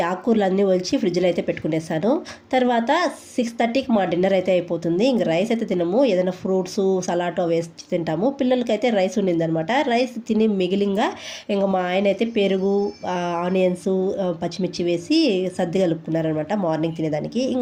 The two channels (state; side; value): identical; both; correlation 1.00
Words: ఆకుకూరలు అన్నీ ఒలిచి ఫ్రిడ్జ్లో అయితే పెట్టుకునేసాను. తర్వాత 6:30కి మా డిన్నర్ అయితే అయిపోతుంది. ఇంకా రైస్ అయితే తినము, ఏదైనా ఫ్రూట్స్ సలాటో వేసి తింటాము. పిల్లలకైతే రైస్ ఉండిందనమాట. రైస్ తిని మిగిలింగా ఇంకా మా ఆయన అయితే పెరుగు, ఆనియన్స్, పచ్చిమిర్చి వేసి సర్ది కలుపుకున్నారనమాట మార్నింగ్ తినేదానికి.